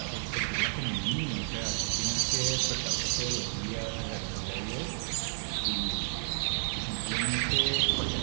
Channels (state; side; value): silent; left; digital silence